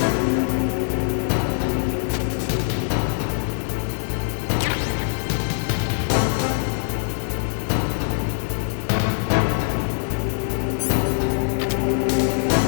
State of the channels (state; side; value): silent; right; digital silence